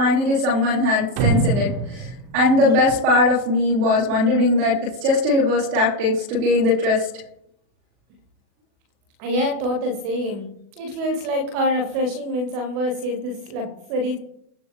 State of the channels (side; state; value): left; late; 40 ms